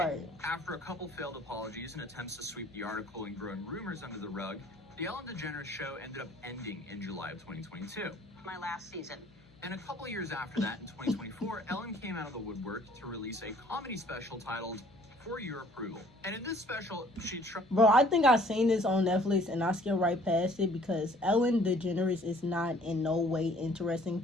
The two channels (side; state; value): left; noise; hum, 28 dB below the sound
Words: After a couple failed apologies and attempts to sweep the article and growing rumors under the rug, the Ellen DeGeneres show ended up ending in July of 2022. My last season. And a couple years after that, in 2024, Ellen came out of the woodwork to release a comedy special titled For Your Approval. And in this special, she Bro, I think I seen this on Netflix and I skipped right past it because Ellen DeGeneres is not in no way interesting